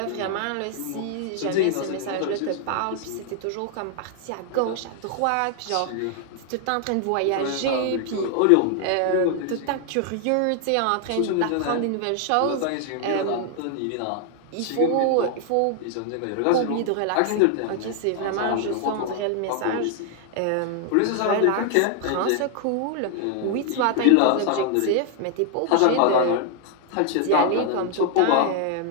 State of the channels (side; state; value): both; different; correlation 0.00